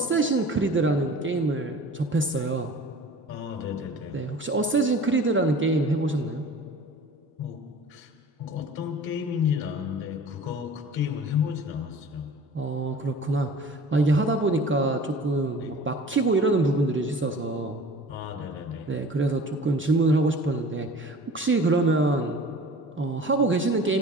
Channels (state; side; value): normal; both; correlation 0.43